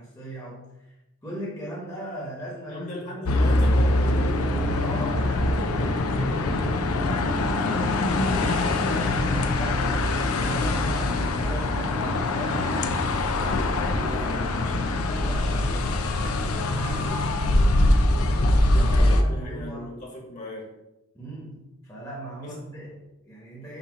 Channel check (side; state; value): both; normal; correlation 0.71